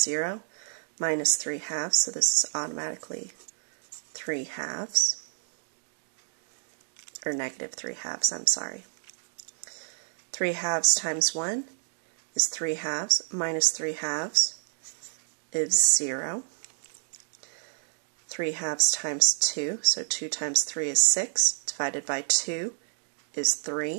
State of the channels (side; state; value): left; silent; digital silence